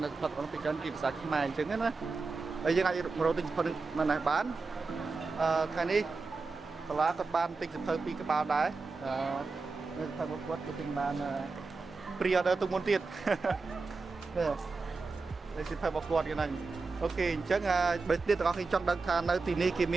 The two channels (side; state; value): left; quieter; 4.1 dB